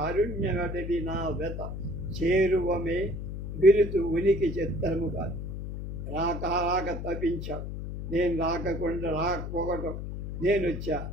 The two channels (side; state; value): left; noise; hum, 6 dB below the sound